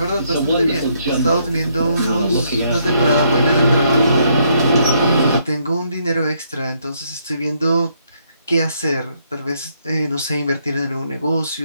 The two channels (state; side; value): inverted; both; correlation -0.73